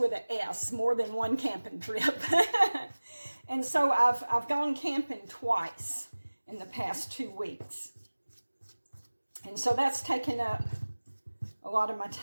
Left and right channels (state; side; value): inverted; both; correlation -1.00